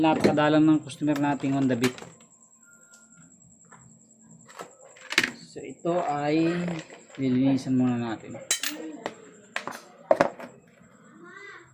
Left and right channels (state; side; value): identical; both; correlation 1.00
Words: ng customer nating Honda Beat. So ito ay nilinisan muna natin.